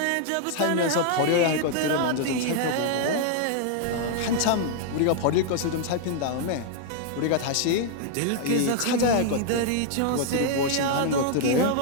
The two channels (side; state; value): both; different; correlation 0.00